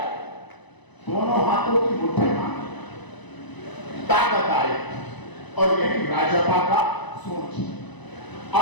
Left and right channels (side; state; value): right; late; 1.0 ms